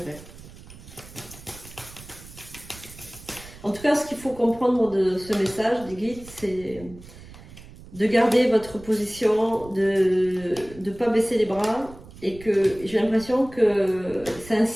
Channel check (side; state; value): right; noise; rumble, 18 dB below the sound